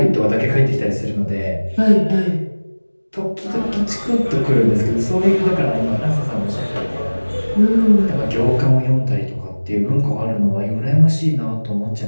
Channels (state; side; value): inverted; both; correlation -1.00